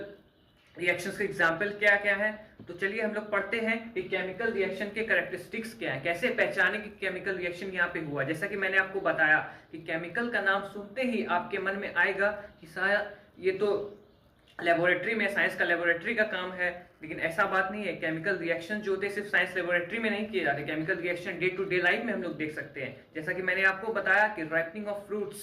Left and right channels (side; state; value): both; identical; correlation 1.00